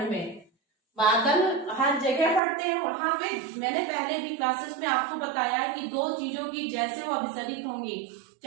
में, बादल हर जगह फटते हैं। वहां पे मैंने पहले भी क्लासेस में आपको बताया है कि दो चीजों की जैसे वो अभिसरित होंगी,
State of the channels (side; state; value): left; drops out; at 2.4 s